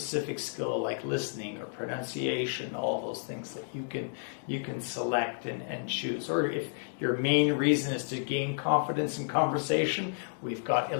skill like listening or pronunciation, all those things that you can select and choose. Or if your main reason is to gain confidence in conversation, we've got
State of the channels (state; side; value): silent; right; digital silence